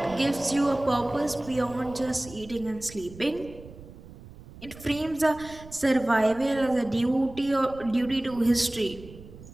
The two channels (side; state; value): right; noise; rumble, 18 dB below the sound